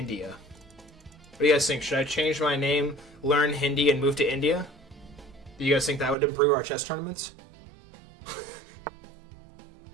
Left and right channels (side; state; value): left; drops out; at 6.2 s